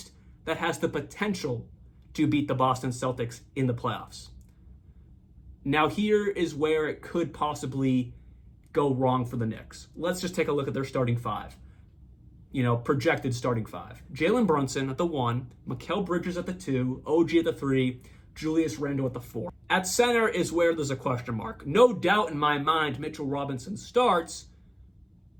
that has the potential to beat the Boston Celtics in the playoffs. Now here is where it could possibly go wrong for the Knicks. Let's just take a look at their starting five. Projected starting five. Jalen Brunson at the 1, Mikal Bridges at the 2, OG at the 3, Julius Randle at the 4. At center is where there's a question mark. No doubt in my mind, Mitchell Robinson starts,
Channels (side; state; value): both; identical; correlation 1.00